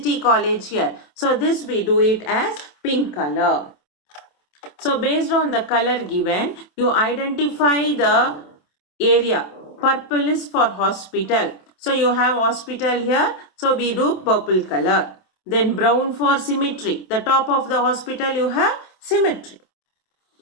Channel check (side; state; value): right; late; 27 ms